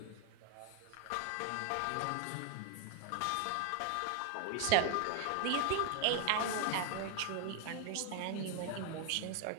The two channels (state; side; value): different; both; correlation 0.00